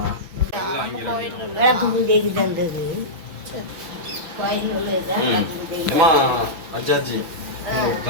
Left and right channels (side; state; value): left; late; 5.9 ms